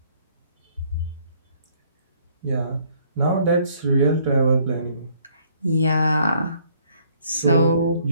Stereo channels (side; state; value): both; inverted; correlation -0.63